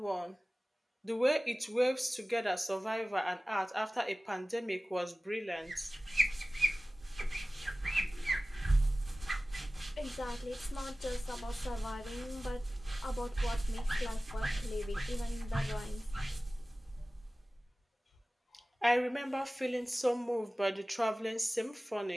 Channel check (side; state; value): both; normal; correlation 0.97